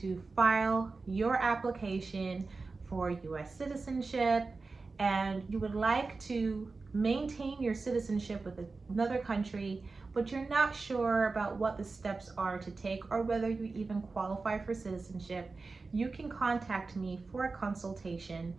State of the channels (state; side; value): quieter; left; 4.0 dB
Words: to file your application for U.S. citizenship and you would like to maintain your citizenship with another country, but you're not sure about what the steps are to take or whether you even qualify for citizenship, you can contact me for a consultation